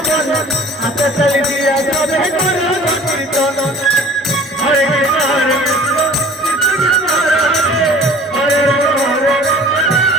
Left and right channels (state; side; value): normal; both; correlation 0.46